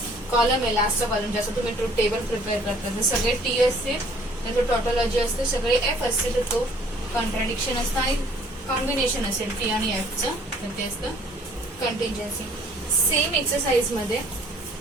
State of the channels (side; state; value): both; normal; correlation 0.57